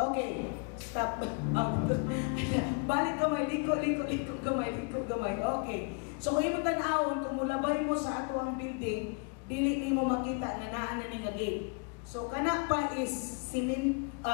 stop. Balik gamay, liko gamay. Okay. So kung imo tan-awon, kung mulabay mo sa ato ang building, dili nimo makita nga naa na ni nga gate. So kana pa is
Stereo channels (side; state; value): right; quieter; 34.8 dB